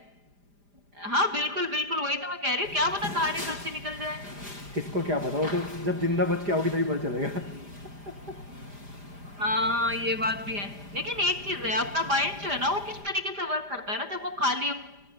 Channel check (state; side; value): late; left; 5.0 ms